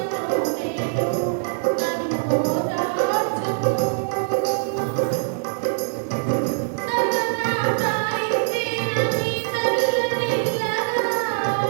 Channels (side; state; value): left; silent; 63 dB below the other